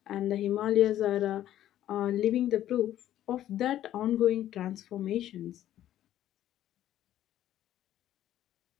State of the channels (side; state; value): right; quieter; 12.3 dB